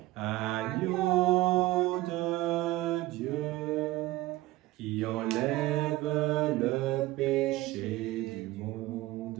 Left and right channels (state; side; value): quieter; left; 17.7 dB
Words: Agneau de Dieu, qui enlève le péché du